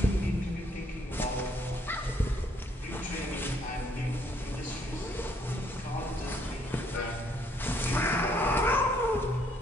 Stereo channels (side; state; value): both; normal; correlation 0.68